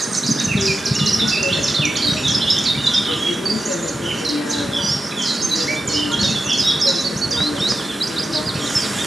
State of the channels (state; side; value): normal; both; correlation 0.91